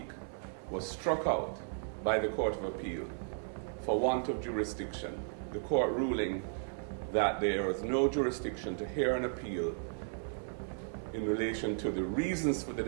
was struck out by the Court of Appeal for want of jurisdiction, the court ruling that there is no jurisdiction to hear an appeal in relation to the reasons for the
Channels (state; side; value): silent; left; 54 dB below the other